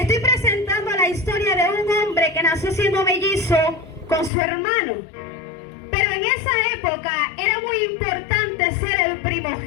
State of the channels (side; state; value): right; drops out; at 4.3 s